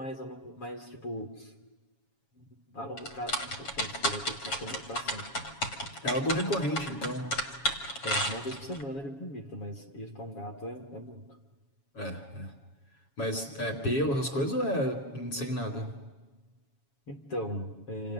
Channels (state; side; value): late; right; 7.2 ms